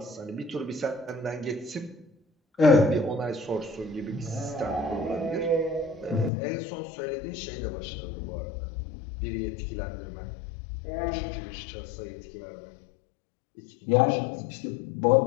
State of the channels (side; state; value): right; drops out; at 6.3 s